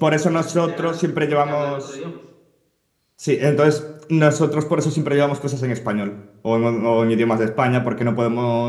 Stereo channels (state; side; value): identical; both; correlation 1.00